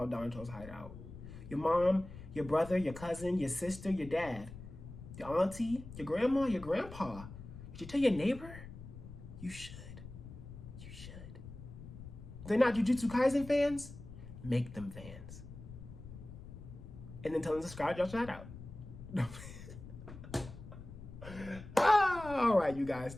Danchou's Hideout? Your mom, your brother, your cousin, your sister, your dad, your auntie, your grandma, your grandpa. Did you tell your neighbor? You should. You should. They're not Jujutsu Kaisen fans? Make them fans. And then tell them to subscribe, y'all shout out. All right, you guys.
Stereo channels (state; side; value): noise; left; rumble, 13 dB below the sound